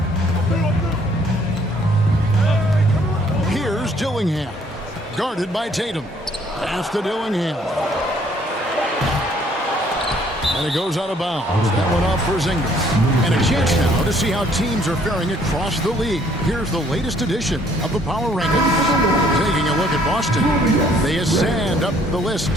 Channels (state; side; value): normal; both; correlation 0.63